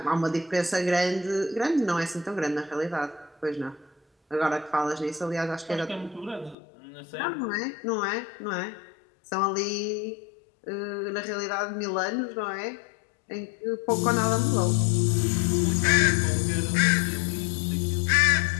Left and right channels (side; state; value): right; drops out; at 6.6 s